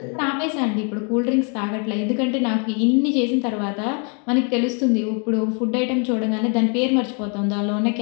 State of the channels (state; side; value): quieter; right; 37.8 dB